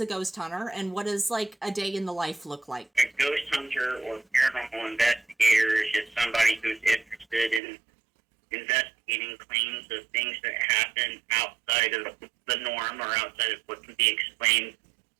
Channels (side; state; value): left; drops out; at 7.6 s